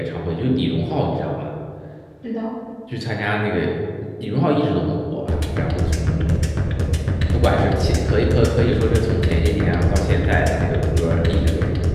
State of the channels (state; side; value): identical; both; correlation 1.00